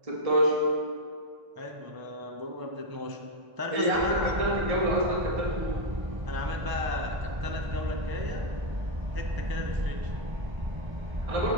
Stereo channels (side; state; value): left; late; 1.0 ms